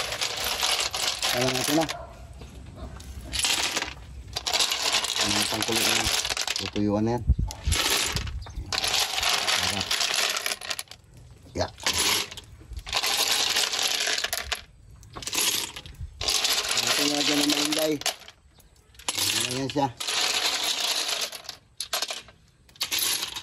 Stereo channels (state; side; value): identical; both; correlation 1.00